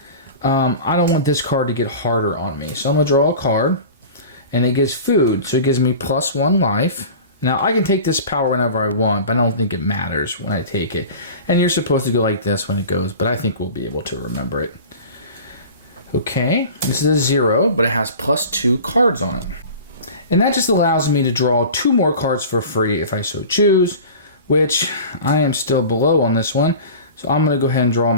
I don't want this card to get harder on me. So I'm going to draw a card, and it gives food. So it gives me plus 1 life. Now I can take this power whenever I want, but I don't think it matters when I take it. And you're supposed to go like this when it goes, but I think we'll be able to remember it. Okay, this is a 0, but it has plus 2 cards on it. And that just allows me to draw 2 more cards for free if I so choose, which I am still below on this one. So I'm going to go ahead and draw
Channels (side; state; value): both; inverted; correlation -0.37